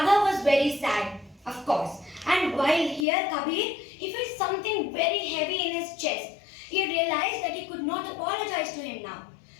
was very sad, of course. And while here Kabir, he felt something very heavy in his chest. He realized that he could not apologize to him now.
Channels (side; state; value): right; drops out; at 3.1 s